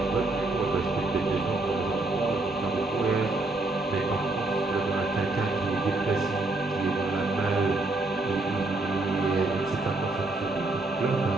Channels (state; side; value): quieter; left; 3.0 dB